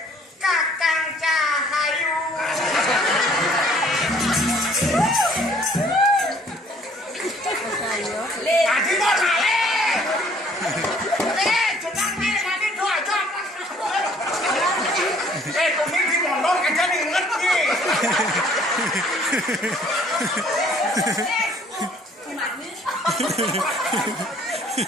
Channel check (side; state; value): both; normal; correlation 0.58